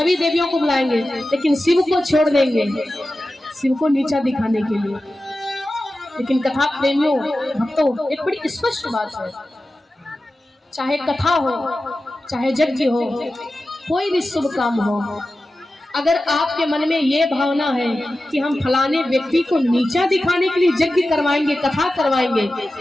देवियों को बुलाएंगे, लेकिन शिव को छोड़ देंगे, शिव को नीचा दिखाने के लिए। लेकिन कथा प्रेमियों भक्तों एक बड़ी स्पष्ट बात है, चाहे कथा हो चाहे यज्ञ हो, कोई भी शुभ काम हो, अगर आपके मन में ये भावना है कि हम फलाने व्यक्ति को नीचा दिखाने के लिए यज्ञ करवाएंगे, कथा करवाएंगे,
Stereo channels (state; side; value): normal; both; correlation 0.94